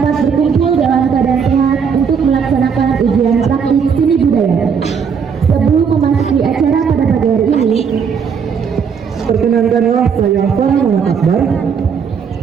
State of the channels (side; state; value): left; quieter; 6.6 dB